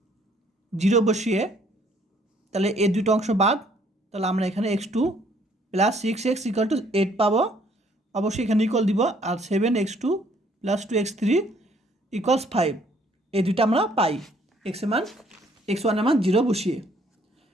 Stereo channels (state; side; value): normal; both; correlation 0.63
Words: 0 বসিয়ে তাহলে এই দুটো অংশ বাদ, তাহলে আমরা এখানে x2 + 6x = 8 পাবো। অবশ্যই এখানে ইকুয়াল দিব, আর 7x2 + 2x3 = 5, এই দুটো আমরা পাই x1 এর মান 0 বসিয়ে।